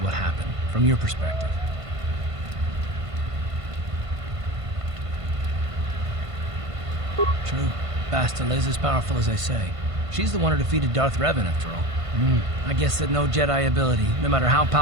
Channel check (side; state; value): left; late; 1.5 ms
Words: happened, from your perspective. True. Bastila is as powerful as they say. She's the one who defeated Darth Revan, after all. I guess that no Jedi ability, no matter how